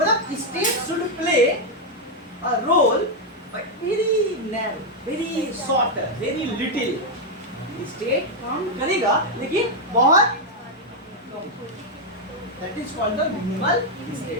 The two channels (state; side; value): normal; both; correlation 0.00